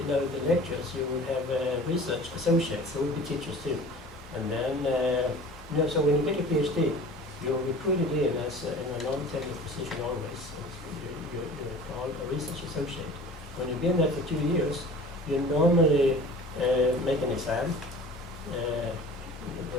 the lecturers, you would have research associates, there would be teachers too. And then, so when you get your PhD, you're recruited in as in a non-tenured position always. You're called a research associate. When you've been there for 2 years, you normally make an exam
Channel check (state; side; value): normal; both; correlation 0.42